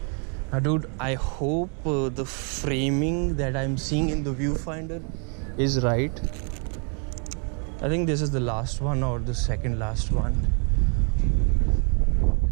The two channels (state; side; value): quieter; left; 39.7 dB